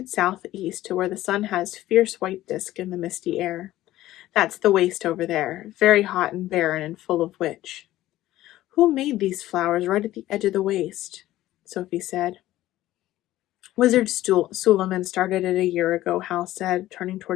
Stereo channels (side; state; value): right; quieter; 15.1 dB